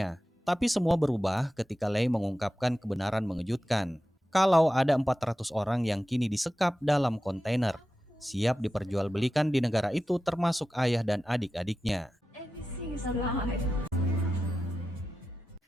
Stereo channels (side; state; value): both; normal; correlation 0.93